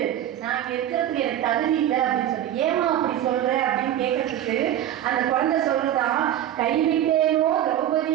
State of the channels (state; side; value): quieter; left; 11.5 dB